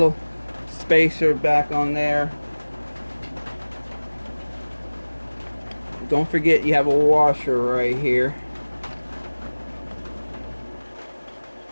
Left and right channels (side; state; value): both; inverted; correlation -1.00